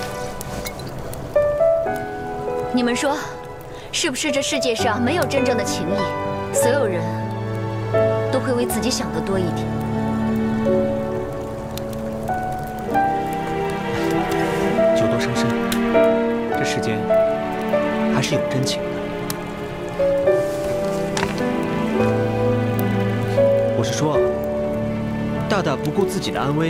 你们说，是不是这世界上没有真正的情谊？所有人都会为自己想得多一点。酒多伤身，这世间还是有真情的。是说，大大不顾自己的安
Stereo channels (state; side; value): identical; both; correlation 1.00